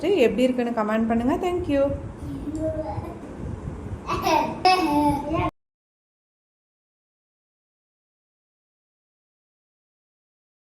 எப்படி இருக்குன்னு கமெண்ட் பண்ணுங்கள். தேங்க்யூ.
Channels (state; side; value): identical; both; correlation 1.00